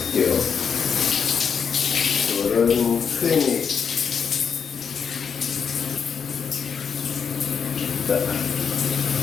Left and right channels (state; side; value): quieter; right; 6.7 dB